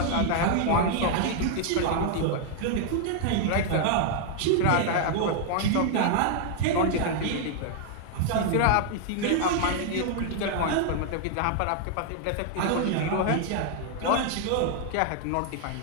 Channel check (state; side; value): different; both; correlation 0.00